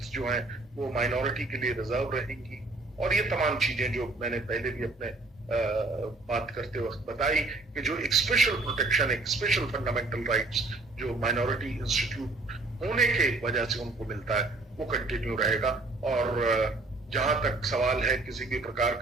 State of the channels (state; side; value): quieter; left; 3.2 dB